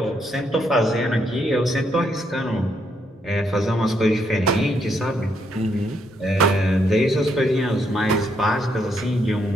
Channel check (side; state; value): both; normal; correlation 0.76